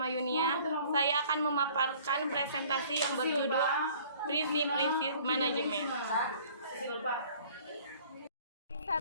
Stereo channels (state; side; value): inverted; both; correlation -0.53